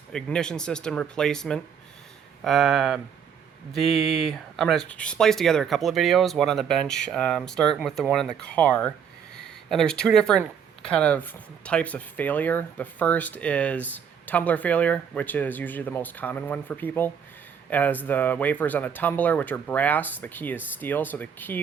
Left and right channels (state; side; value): quieter; left; 7.6 dB